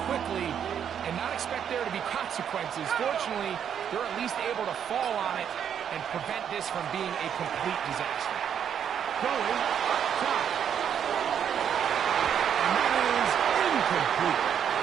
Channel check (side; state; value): left; quieter; 8.6 dB